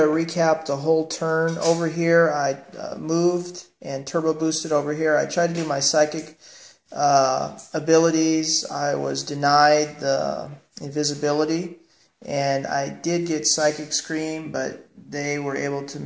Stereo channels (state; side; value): identical; both; correlation 1.00